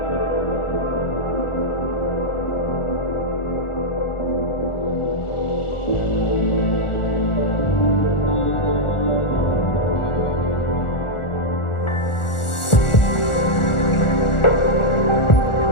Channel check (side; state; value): right; late; 1.4 ms